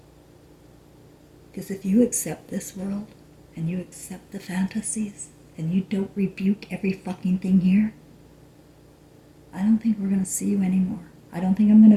Because if you accept this world and you accept the fantasies and you don't rebuke every fucking thing here, I don't think we're going to see you anymore. I don't think I'm going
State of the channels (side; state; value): both; identical; correlation 1.00